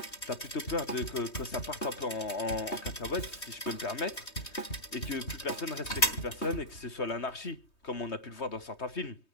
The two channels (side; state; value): right; late; 3.2 ms